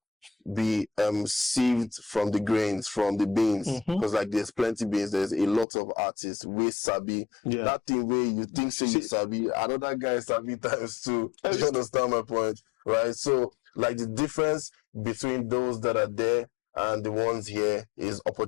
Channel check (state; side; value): drops out; right; at 5.7 s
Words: be sieved from the grains, from the beans. Because like there's plenty beans, there's a lot of artists with sabi. That thing where you think say you sabi, another guy sabi times two. Do you understand my point? Right? So like the difference between those that are there and the ones here is